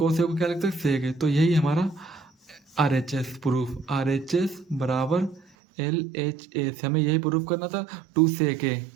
ए को क्या लिख सकते हैं सेक ए। तो यही हमारा RHS प्रूफ, RHS बराबर LHS, हमें यही प्रूफ करना था 2 सेक ए,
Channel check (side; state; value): left; drops out; at 5.5 s